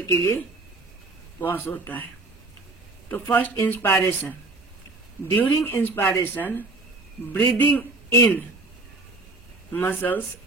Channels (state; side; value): quieter; left; 3.2 dB